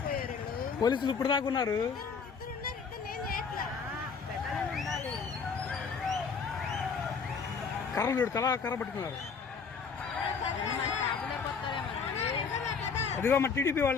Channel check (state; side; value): quieter; right; 5.6 dB